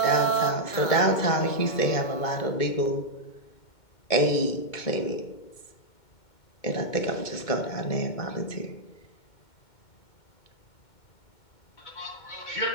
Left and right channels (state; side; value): late; right; 2.2 ms